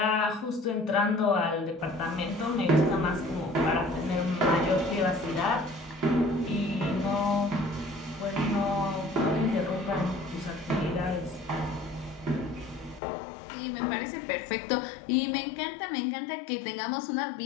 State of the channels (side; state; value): right; drops out; at 13.0 s